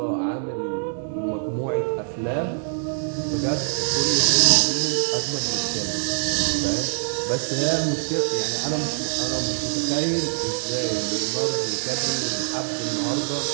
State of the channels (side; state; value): left; silent; digital silence